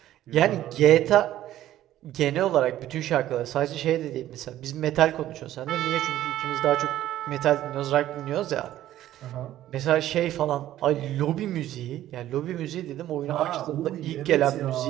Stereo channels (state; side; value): quieter; left; 13.3 dB